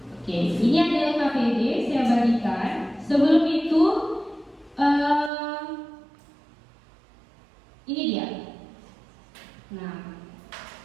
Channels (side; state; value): left; drops out; at 5.3 s